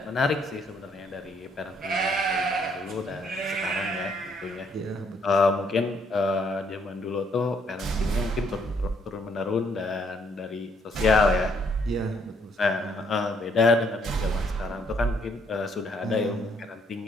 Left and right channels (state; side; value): normal; both; correlation 0.69